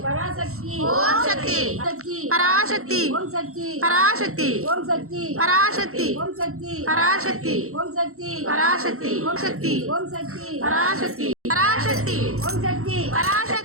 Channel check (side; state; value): left; late; 0.63 ms